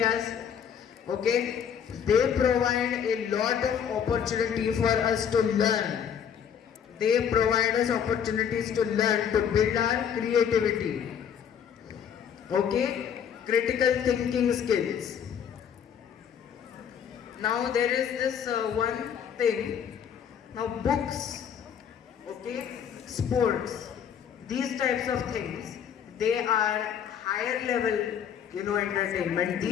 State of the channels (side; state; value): right; quieter; 8.2 dB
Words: okay, they provide a lot of opportunity for us to learn. They provide us opportunities to learn, to build our creativity, okay, critical thinking skills. Now there is this one thing. Now books, okay, sports, these types of things, they are higher level, entertainment.